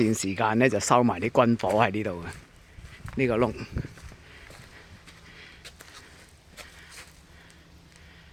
時間呢，就收埋啲軍火喺呢度嘅，呢個窿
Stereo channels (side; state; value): both; identical; correlation 1.00